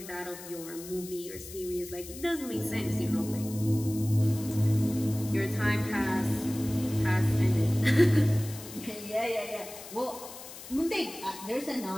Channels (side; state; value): left; noise; hiss, 14 dB below the sound